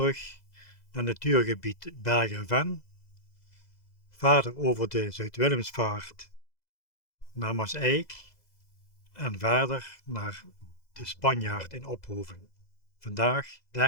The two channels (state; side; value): late; right; 2.0 ms